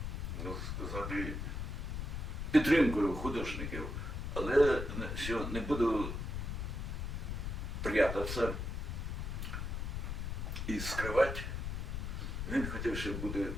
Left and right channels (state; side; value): noise; left; rumble, 3 dB below the sound